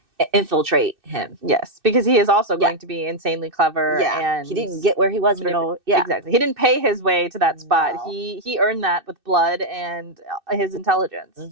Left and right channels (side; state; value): left; late; 2.6 ms